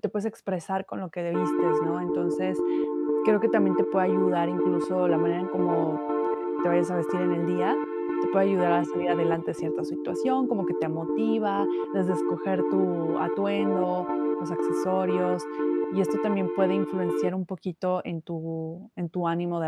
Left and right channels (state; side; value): identical; both; correlation 1.00